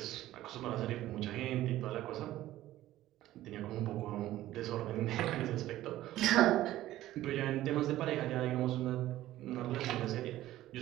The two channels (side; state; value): left; quieter; 14.6 dB